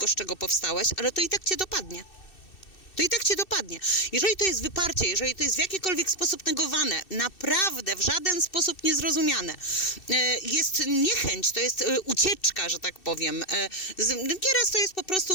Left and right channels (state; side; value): late; right; 2.6 ms